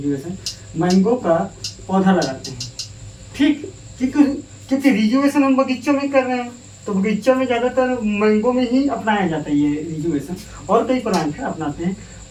मैंगो का पौधा लगाते हैं। ठीक, क्योंकि रिजुवेशन हम बगीचों में कर रहे हैं, तो बगीचों में ज़्यादातर मैंगो में ही अपनाया जाता है ये रिजुवेशन। और कई प्लांट है अपनाते हैं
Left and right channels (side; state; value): both; identical; correlation 1.00